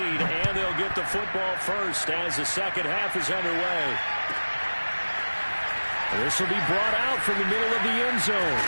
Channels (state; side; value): inverted; both; correlation -1.00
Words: and they'll get the football first as the second half is underway. This will be brought out from the middle of the end zone.